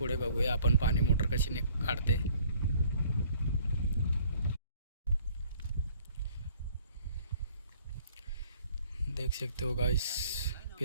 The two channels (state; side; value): inverted; both; correlation -0.57